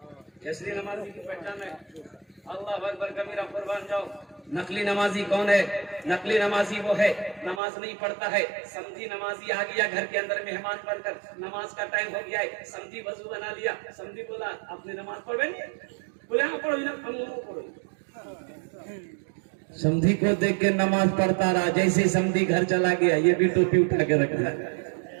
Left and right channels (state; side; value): drops out; left; at 7.6 s